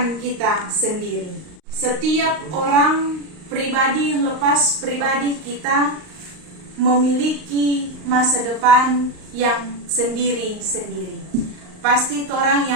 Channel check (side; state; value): left; late; 38 ms